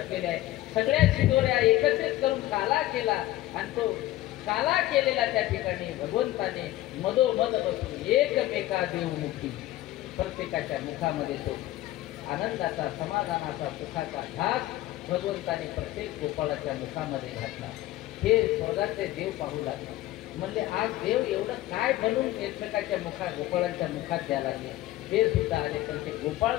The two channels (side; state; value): right; quieter; 15.7 dB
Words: आहे. सगळ्या शिदोऱ्या एकत्रित करून काला केला आणि तो काला केलेला त्या ठिकाणी भगवंताने मधोमध बसून एकमेका देवमुखी प्रत्येकाच्या मुखामध्ये तो आनंदाचा समाधानाचा सुखाचा घास भगवंताने प्रत्येक गोपाळाच्या मुखामध्ये घातला. हे स्वर्गातले देव पाहू लागले. म्हणले आज देव एवढं काय बनून एकमेकाच्या गोपाळांच्या मुखात द्यायला लागले. ते सुद्धा आले पण ते गोपाळ